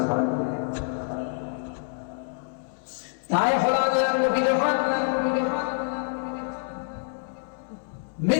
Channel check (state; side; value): silent; right; 58 dB below the other